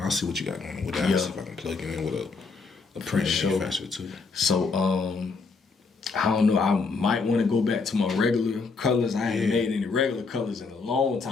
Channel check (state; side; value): quieter; right; 4.5 dB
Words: see what you got going on with that. Yeah. I'll see if I can plug you in with a print sure. manufacturer too. So I don't know. I might want to go back to my regular colors. I haven't made any regular colors in a long